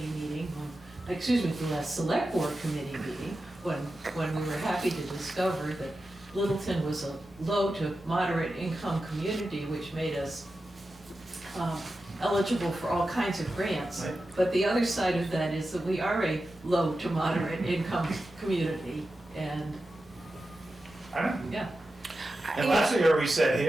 meeting, the last select board committee meeting, when we were happy to discover that Littleton was a low to moderate income community, which made us eligible for all kinds of grants. Right. But the other side of that is that we are a low to moderate income community, and, I don't, yeah. And last year we sat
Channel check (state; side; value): normal; both; correlation 0.92